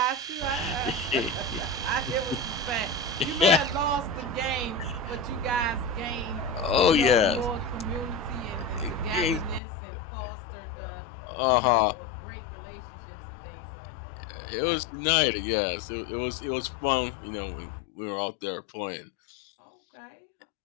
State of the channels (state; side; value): drops out; right; at 9.6 s